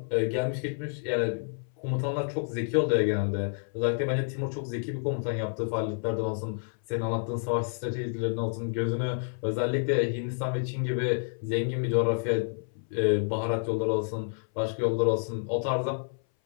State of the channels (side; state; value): right; silent; 58 dB below the other